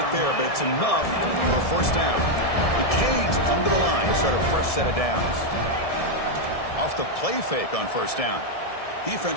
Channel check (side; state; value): right; late; 1.7 ms